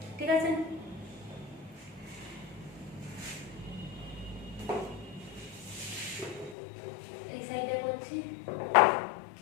ঠিক আছে? এই সাইডে করছি,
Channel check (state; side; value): drops out; right; at 6.6 s